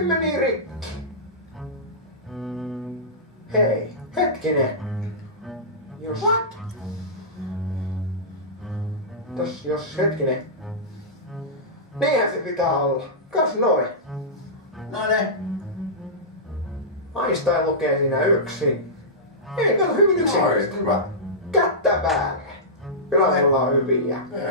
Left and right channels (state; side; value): normal; both; correlation -0.15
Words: meni rikki. Hei, hetkinen. Jos... What? Jos hetkinen. Niinhän se pitää olla. Kas noin. No ne. Einstein lukee siinä yksin. Ei, kato hyvin yksinkertaisesti. Hyvä. Kättä päälle. Kyllä me ollaan hyviä.